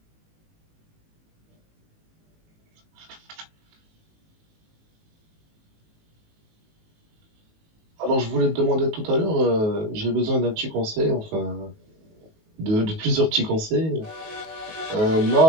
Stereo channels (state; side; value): late; left; 19 ms